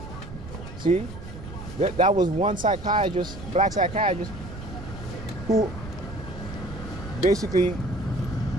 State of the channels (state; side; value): noise; right; rumble, 11 dB below the sound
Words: See, that was one psychiatrist, black psychiatrist, who basically